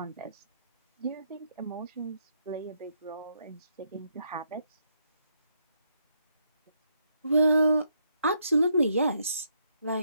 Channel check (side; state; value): both; inverted; correlation -0.76